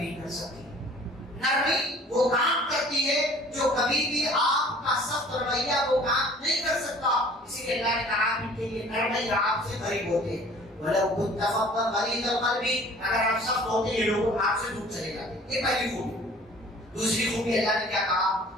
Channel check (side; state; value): both; normal; correlation 0.50